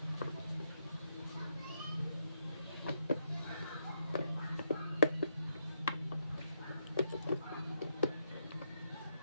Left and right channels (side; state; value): both; inverted; correlation -0.79